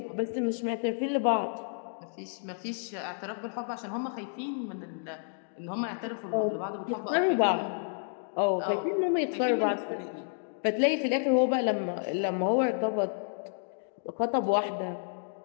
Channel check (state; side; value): silent; right; digital silence